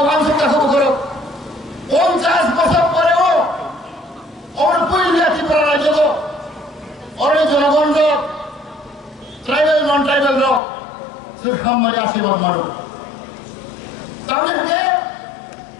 ওয়াংশ কাকু করো 50 বছর পরেও আমার পইলিয়া ত্রিপুরা রাজ্য অরে জনগণ ট্রাইবেল নন ট্রাইবেল সে খামারি আশীর্বাদ মানো তাহলে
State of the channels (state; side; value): drops out; right; at 10.6 s